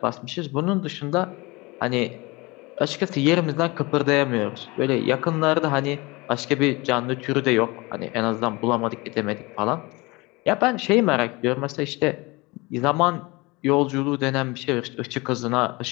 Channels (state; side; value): quieter; right; 24.4 dB